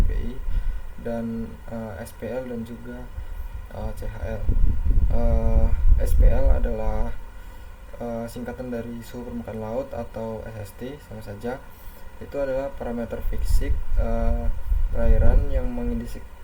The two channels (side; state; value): both; identical; correlation 1.00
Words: dan SPL dan juga CHL. SPL adalah singkatan dari suhu permukaan laut atau SST, sama saja. Itu adalah parameter fisik perairan yang